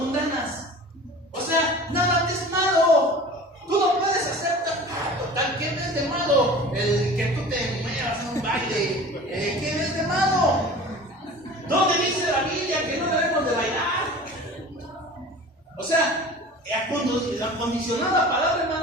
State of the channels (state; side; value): normal; both; correlation 0.40